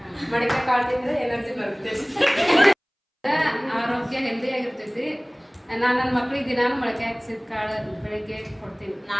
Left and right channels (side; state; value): both; identical; correlation 1.00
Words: ಮಡಿಕೆ ಕಾಳು ತಿಂದ್ರೆ ಎನರ್ಜಿ ಬರುತ್ತೆ. ಆರೋಗ್ಯ ಹೆಲ್ದಿ ಆಗಿರ್ತೈತಿ. ನಾನು ನನ್ನ ಮಕ್ಕಳಿಗೆ ದಿನಾನು ಮೊಳಕೆ ಹಾಕ್ಸಿದ ಕಾಳು ಬೆಳಿಗ್ಗೆ ಕೊಡ್ತೀನಿ.